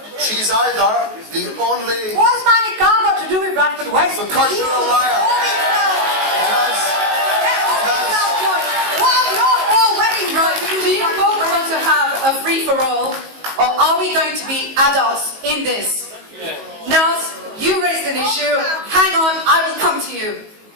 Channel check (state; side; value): late; left; 19 ms